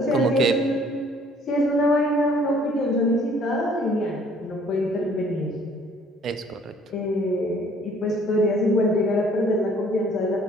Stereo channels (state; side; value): normal; both; correlation 0.58